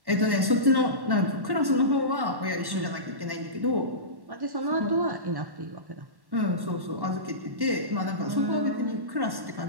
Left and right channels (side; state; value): left; late; 1.1 ms